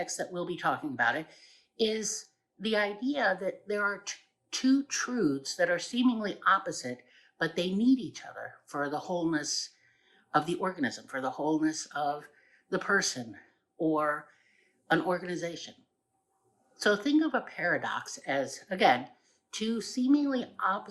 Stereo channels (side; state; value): both; identical; correlation 1.00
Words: that we'll be talking about it, is the idea that there are two truths that are seemingly opposite, but they need each other for the wholeness of the organism, for the wholeness of the person or an organization. So think of a paradox as, again, two seemingly